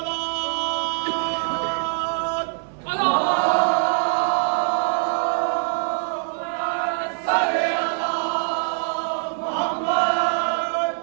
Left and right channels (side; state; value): left; silent; 63 dB below the other